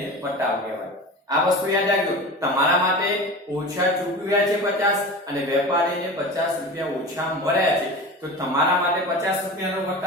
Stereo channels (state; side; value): normal; both; correlation 0.32